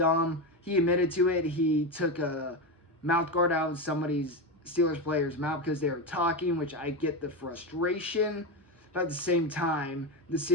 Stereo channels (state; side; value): normal; both; correlation 0.15